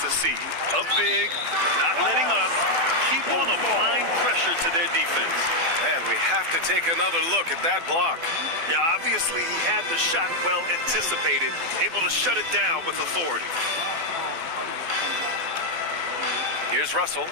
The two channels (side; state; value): left; late; 12 ms